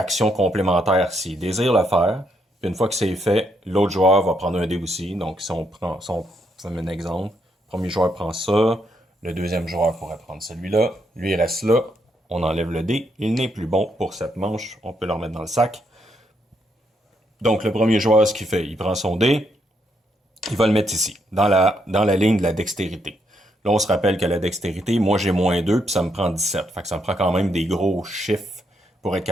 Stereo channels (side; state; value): both; normal; correlation 0.76